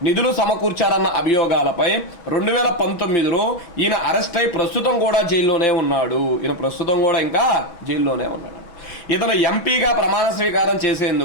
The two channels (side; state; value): right; late; 6.2 ms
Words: నిధులు సమకూర్చారన్న అభియోగాలపై 2019లో ఈయన అరెస్ట్ అయి ప్రస్తుతం కూడా జైల్లోనే ఉన్నాడు. ఈయన ప్రస్తుతం కూడా ఇంకా జైల్లోనే ఉన్నాడు. ఇతను ఎంపీగా ప్రమాణ స్వీకారం